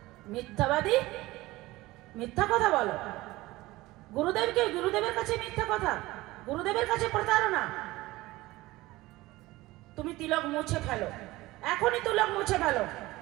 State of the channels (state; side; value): quieter; left; 19.1 dB